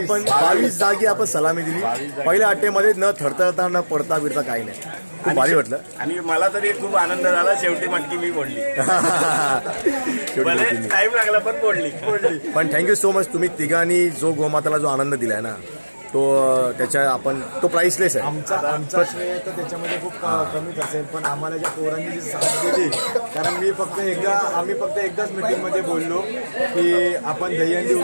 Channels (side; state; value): both; inverted; correlation -1.00